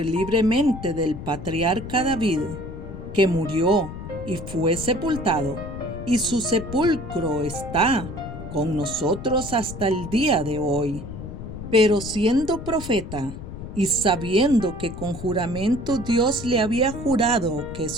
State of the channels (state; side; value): noise; left; rumble, 10 dB below the sound